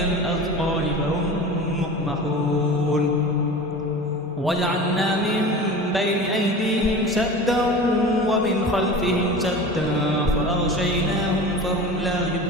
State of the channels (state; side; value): normal; both; correlation 0.34